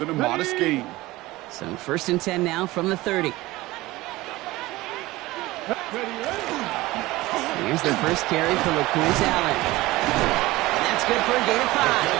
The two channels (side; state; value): left; quieter; 19.1 dB